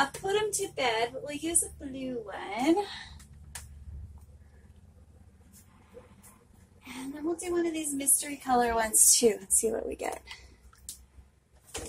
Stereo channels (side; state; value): both; identical; correlation 1.00